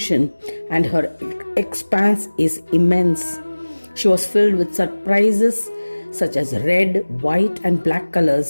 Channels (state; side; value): inverted; both; correlation -1.00